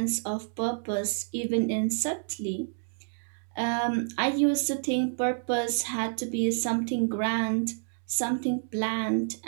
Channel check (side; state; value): left; silent; digital silence